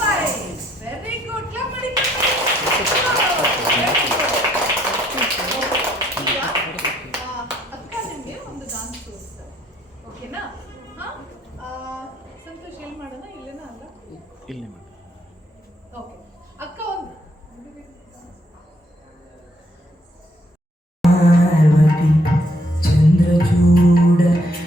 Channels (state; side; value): normal; both; correlation 0.69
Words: 5. Very good. ಕ್ಲಾಪ್ ಮಾಡಿ. ಈಗ ಅಕ್ಕ ನಿಮಗೆ ಒಂದು ಡಾನ್ಸ್ ತೋರಿಸ್ತಾರೆ. ಓಕೆನಾ? ಸಂತೋಷ್ ಎಲ್ಲಿ ಮಾಡೋಣ? ಇಲ್ಲೇನಾ? ಅಲ್ಲ, ಇಲ್ಲಿ ಮಾಡಿ. ಓಕೆ. ಅಕ್ಕ ಒಂದು ಪಾರ್ವತಿ ಚಂದ್ರಚೂಡ